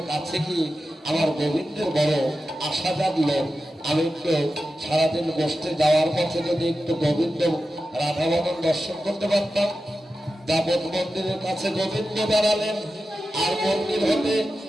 কাছে গিয়ে আমার গোবিন্দের বড় আশা জাগলো আমি একটু সারাদিন গোষ্ঠে যাওয়ার পথে যদি একটু গোবিন্দ রাধাবদন দর্শন করতে পারতাম। দাপট মন্দিরের কাছে গোবিন্দ দাঁড়ালেন, আর মন্দির হতে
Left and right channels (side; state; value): both; normal; correlation 0.92